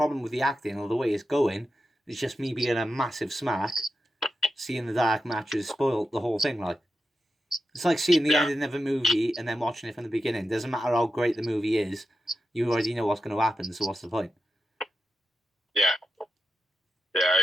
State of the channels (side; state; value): both; normal; correlation 0.89